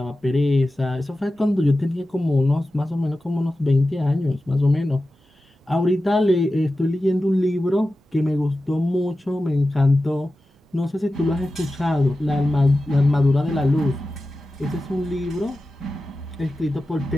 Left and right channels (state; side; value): normal; both; correlation 0.94